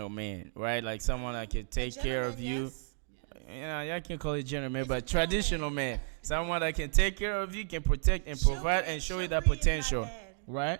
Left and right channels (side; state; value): left; silent; digital silence